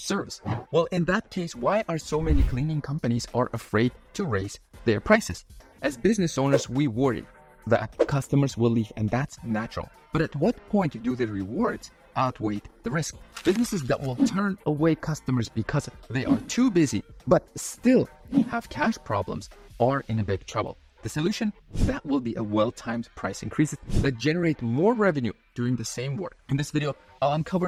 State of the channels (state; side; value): identical; both; correlation 1.00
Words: Well, in that case, why are so many cleaning companies are afraid to raise their prices? As business owners, we worry that customers will leave, and that's natural. But at what point do the rewards outweigh the risk? Businesses that will turn away customers because they are too busy but still have cash problems are in a big trouble. The solution? That will be a well-timed price increases that generate more revenue doing the same work. In this video, I'll